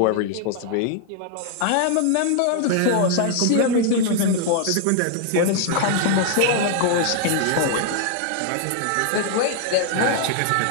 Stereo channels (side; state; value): both; different; correlation 0.00